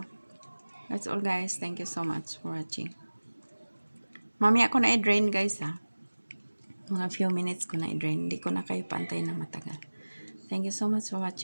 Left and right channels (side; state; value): both; inverted; correlation -1.00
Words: that's all guys. Thank you so much for watching. Mamaya ko na i-drain guys ha. Mga few minutes ko na i-drain. Hindi ko na kayo pantay na matagal. Thank you so much for